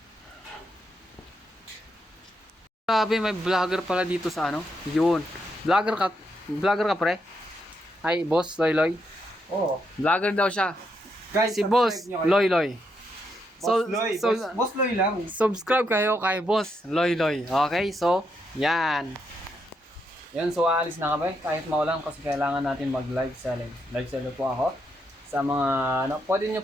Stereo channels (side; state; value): both; normal; correlation 0.80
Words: Grabe, may vlogger pala dito sa ano. Yun. Vlogger ka pre? Ay, Boss Loy Loy. Oo. Vlogger daw siya. Guys, Si Boss Loy Loy. Boss Loy. Boss Loy lang. Subscribe kayo kay Boss Loy Loy. Okay? So, yan. Yan, so aalis na kami. Kahit maulan kasi kailangan natin mag live selling. Live seller po ako. sa mga, ano, pwede nyo